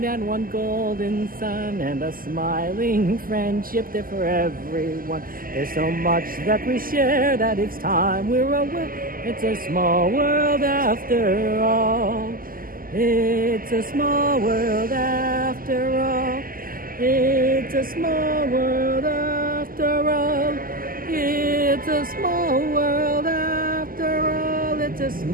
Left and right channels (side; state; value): left; late; 0.42 ms